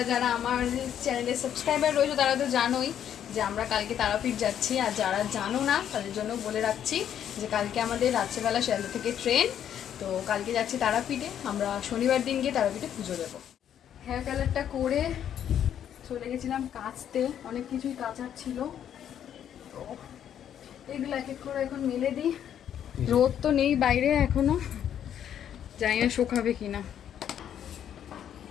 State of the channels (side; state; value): right; quieter; 9.7 dB